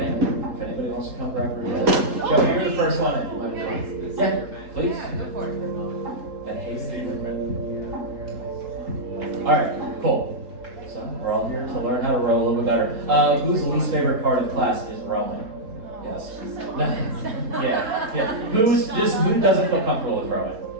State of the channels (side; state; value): left; late; 3.8 ms